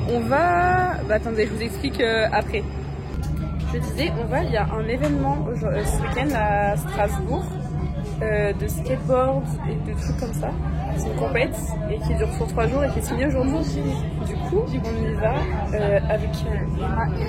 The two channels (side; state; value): both; identical; correlation 1.00